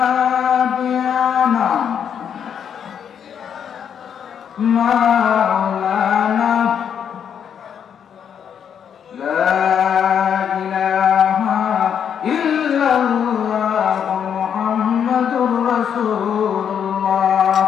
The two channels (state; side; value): quieter; right; 8.2 dB